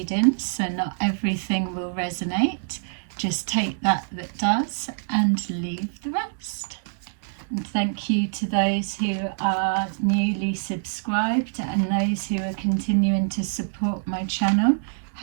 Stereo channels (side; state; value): left; silent; digital silence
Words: so not everything will resonate. Just take that does and leave the rest. And thank you to those who are newly subscribed and those who are continuing to support my channel,